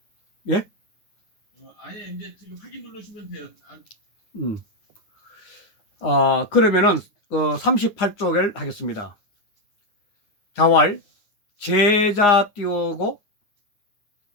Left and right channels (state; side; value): late; right; 9.8 ms